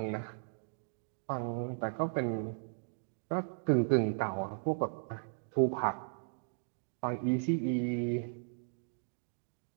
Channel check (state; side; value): silent; left; digital silence